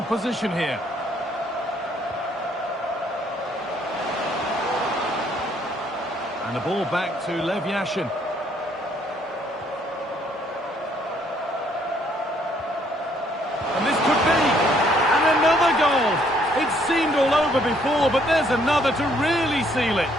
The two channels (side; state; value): both; normal; correlation 0.66